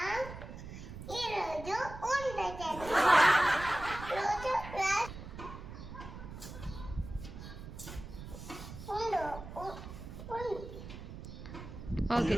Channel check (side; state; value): right; noise; rumble, 11 dB below the sound